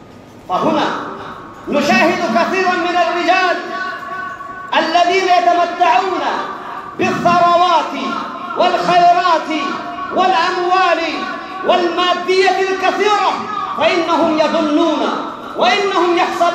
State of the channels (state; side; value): identical; both; correlation 1.00